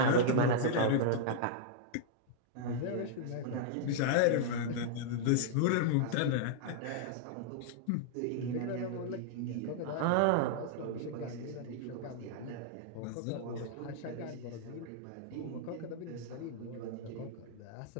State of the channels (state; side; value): different; both; correlation -0.01